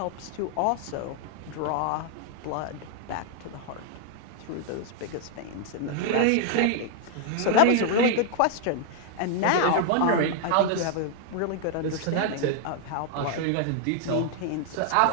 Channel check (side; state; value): both; different; correlation 0.00